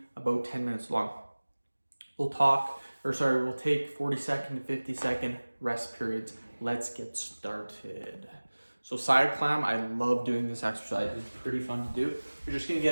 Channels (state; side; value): inverted; both; correlation -1.00